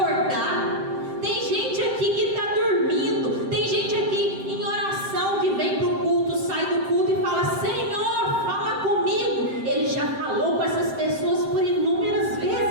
Tem gente aqui que está dormindo, tem gente aqui em oração que vem para o culto, sai do culto e fala: Senhor, fala comigo. Ele já falou com essas pessoas por inúmeras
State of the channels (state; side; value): late; left; 7.7 ms